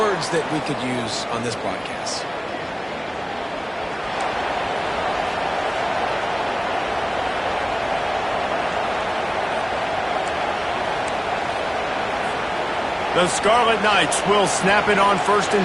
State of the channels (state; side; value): identical; both; correlation 1.00